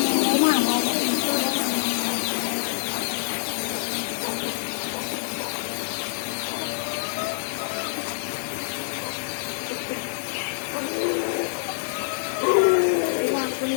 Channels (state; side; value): silent; right; digital silence